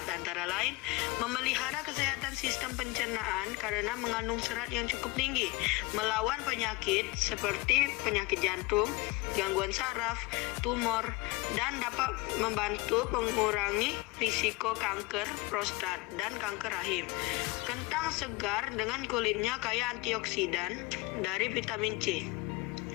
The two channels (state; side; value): quieter; right; 22.0 dB